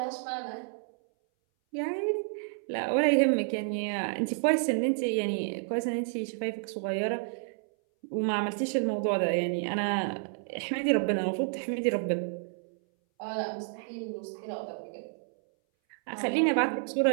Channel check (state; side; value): silent; left; 58 dB below the other